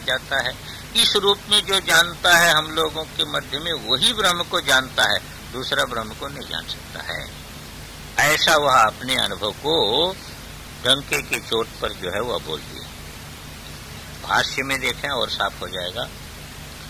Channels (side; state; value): both; identical; correlation 1.00